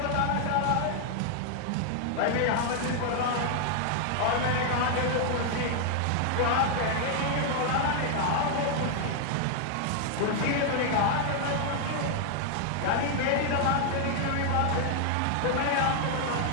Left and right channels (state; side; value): different; both; correlation 0.00